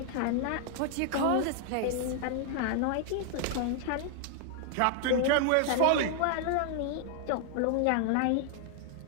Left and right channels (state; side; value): different; both; correlation 0.00